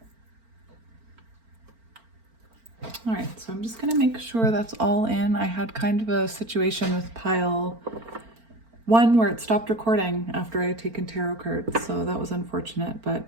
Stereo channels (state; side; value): late; left; 4.4 ms